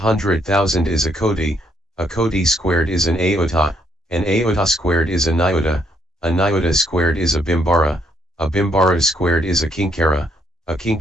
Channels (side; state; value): both; normal; correlation 0.72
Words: is a koti squared is an aota squared is a nyota squared is a bimbara squared is a kinkara